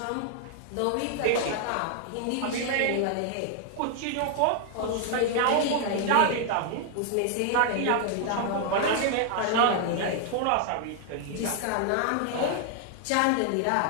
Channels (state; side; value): different; both; correlation 0.00